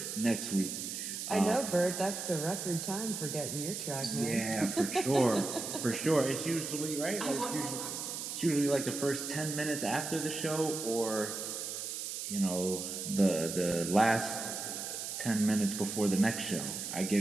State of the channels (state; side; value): noise; right; hiss, 5 dB below the sound